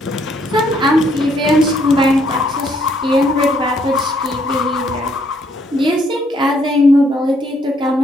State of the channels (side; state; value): both; normal; correlation 0.69